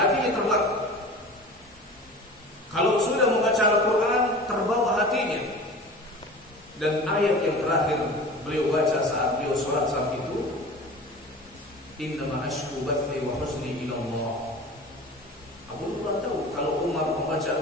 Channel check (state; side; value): normal; both; correlation 0.37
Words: terbang. Kalau sudah membaca Al-Quran, terbawa hatinya. Dan ayat yang terakhir beliau baca saat beliau sholat saat itu, innama ashku bathi wa husni ila Allah. Abu Lu'lu'ah tahu kalau Umar membaca